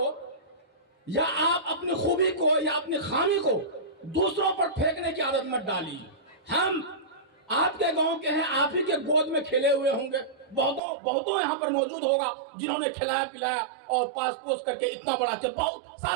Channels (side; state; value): left; drops out; at 10.8 s